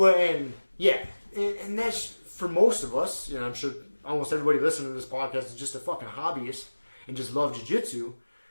and that's for most of us, I'm sure almost everybody listening to this podcast is just a fucking hobbyist. and just love jiu-jitsu,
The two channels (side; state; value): both; inverted; correlation -1.00